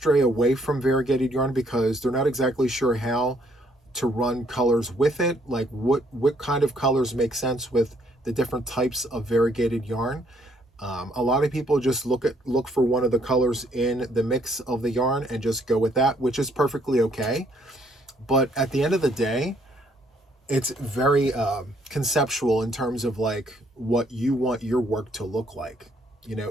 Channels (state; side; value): normal; both; correlation 0.67